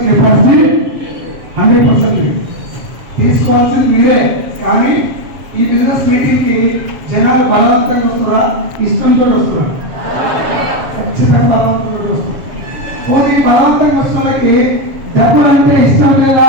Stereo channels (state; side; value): late; left; 7.3 ms